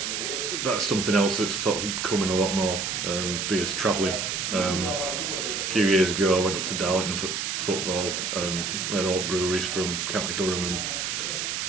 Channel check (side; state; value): right; noise; hiss, 2 dB below the sound